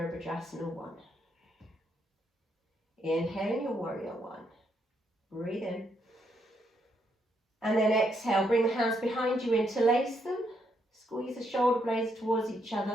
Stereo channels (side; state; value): both; normal; correlation 0.76